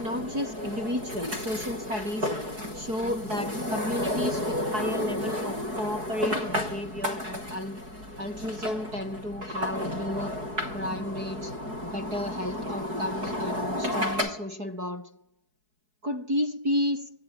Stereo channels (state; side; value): late; left; 4.7 ms